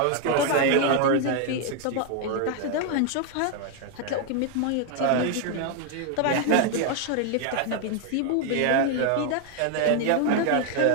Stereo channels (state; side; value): different; both; correlation 0.00